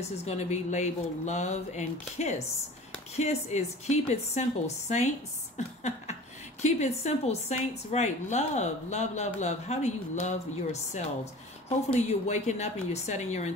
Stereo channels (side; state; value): both; normal; correlation 0.41